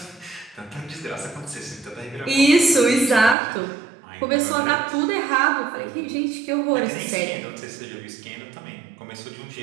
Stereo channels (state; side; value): drops out; left; at 3.4 s